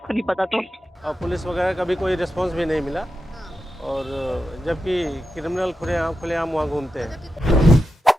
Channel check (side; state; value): both; normal; correlation 0.89